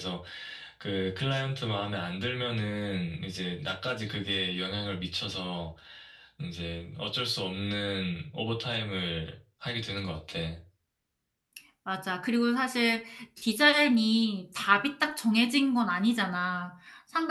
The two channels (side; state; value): both; identical; correlation 1.00